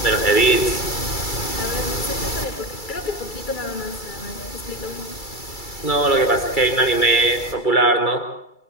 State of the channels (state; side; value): late; right; 2.3 ms